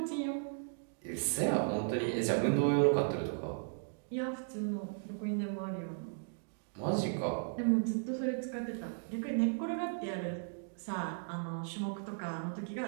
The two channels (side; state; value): left; silent; digital silence